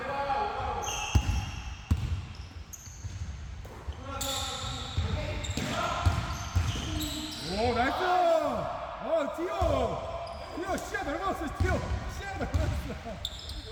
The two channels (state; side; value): identical; both; correlation 1.00